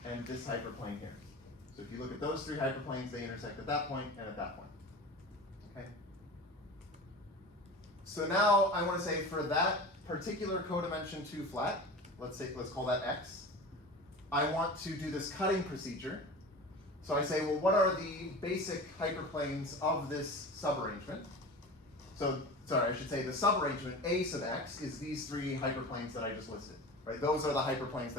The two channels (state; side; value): normal; both; correlation 0.33